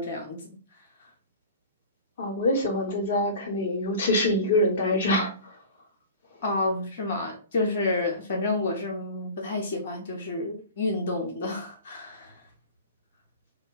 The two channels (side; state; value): both; inverted; correlation -0.37